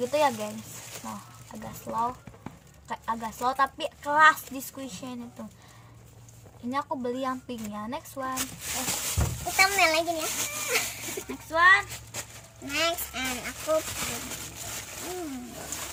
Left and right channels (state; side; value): identical; both; correlation 1.00